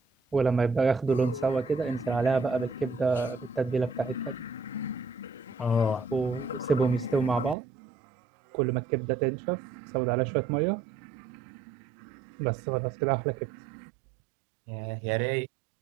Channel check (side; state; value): left; drops out; at 7.6 s